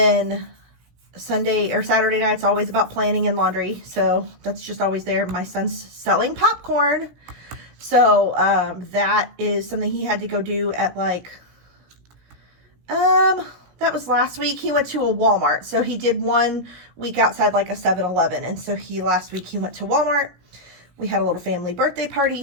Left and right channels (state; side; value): late; left; 17 ms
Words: Sunday or Saturday night's always about planning and laundry. So that's just always there. My son's selling popcorn. So that is something he had to go do at like, that was last week. He went to a Walmart. So he did 1 week outside like a 7-Eleven. And so last week he went to Walmart. We had a little family birthday